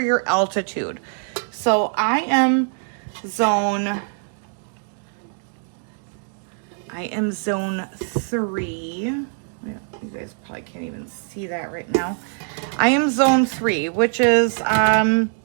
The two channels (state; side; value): silent; left; 56 dB below the other